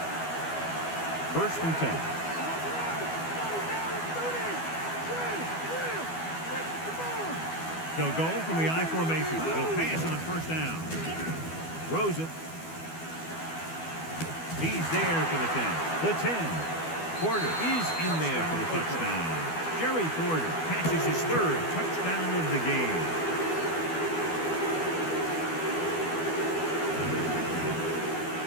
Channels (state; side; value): late; right; 12 ms